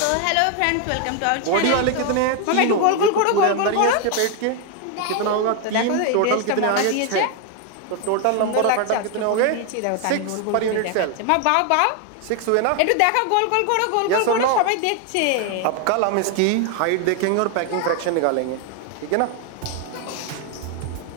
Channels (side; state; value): both; different; correlation 0.01